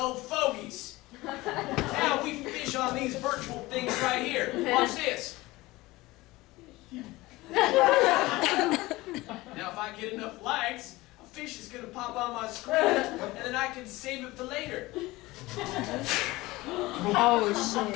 fogies. Now we fish on these virtual things right here. Watch this. Now if I get enough likes, a fish is gonna pop on my screen, and then I can save it for later. Oh shit.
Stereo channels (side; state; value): right; quieter; 20.0 dB